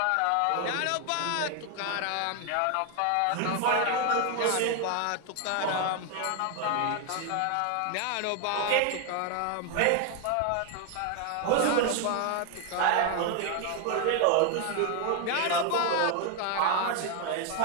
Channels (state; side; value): different; both; correlation 0.01